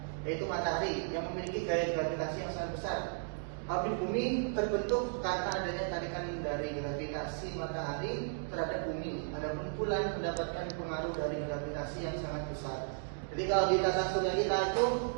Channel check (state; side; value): silent; left; digital silence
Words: yaitu matahari yang memiliki gaya gravitasi yang sangat besar. Orbit bumi terbentuk karena adanya tarikan dari gravitasi matahari terhadap bumi. Adapun bulan mendapatkan pengaruh dari gravitasi yang sangat besar. Jadi kalau di tata surya kita itu